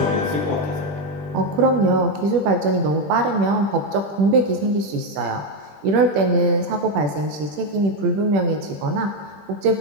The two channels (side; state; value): left; late; 20 ms